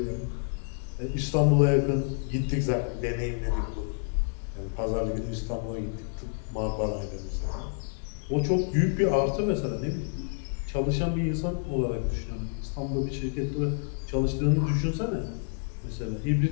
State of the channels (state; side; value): silent; right; 59 dB below the other